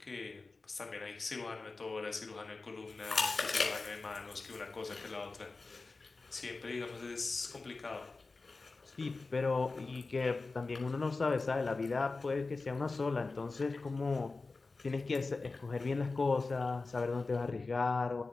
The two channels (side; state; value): right; quieter; 3.8 dB